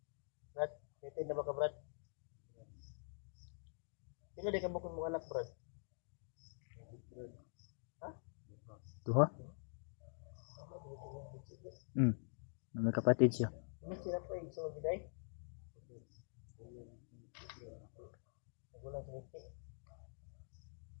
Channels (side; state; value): right; silent; digital silence